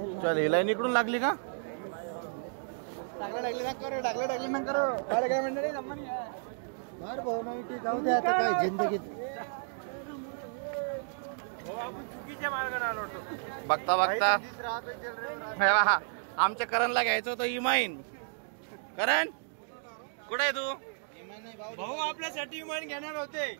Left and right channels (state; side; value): silent; left; digital silence